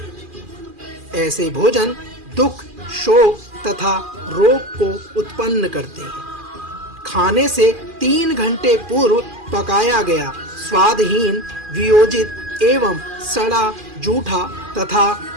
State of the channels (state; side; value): late; left; 2.4 ms